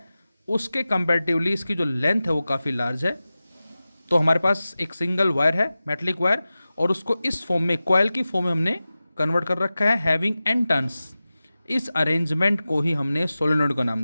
उसके कंपैरेटिवली इसकी जो लेंथ है वो काफ़ी लार्ज है. तो हमारे पास एक सिंगल वायर है मेटलिक वायर और उसको इस फॉर्म में कॉइल की फॉर्म में हमने कन्वर्ट कर रखा है हैविंग एन टर्न्स. इस अरेंजमेंट को ही हमने सोलेनॉइड का नाम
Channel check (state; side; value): inverted; both; correlation -0.95